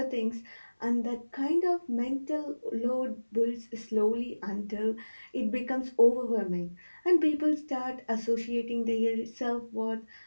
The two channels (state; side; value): inverted; both; correlation -1.00